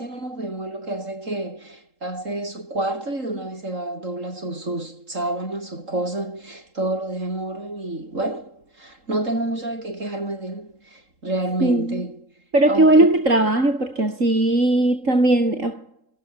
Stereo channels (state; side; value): late; left; 3.8 ms